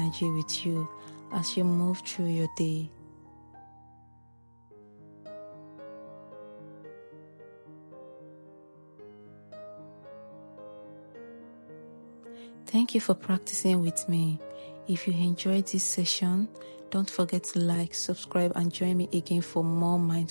with you as you move through your day. Thank you for practicing with me. If you enjoyed this session, don't forget to like, subscribe, and join me again for more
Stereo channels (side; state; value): both; inverted; correlation -1.00